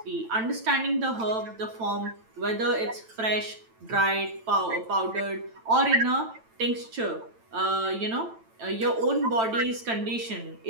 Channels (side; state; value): left; late; 9.0 ms